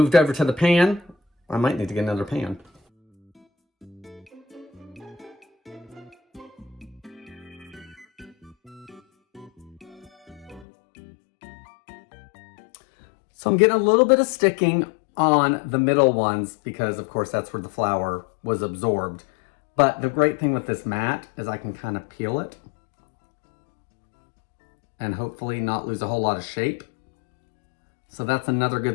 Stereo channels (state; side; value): drops out; right; at 10.7 s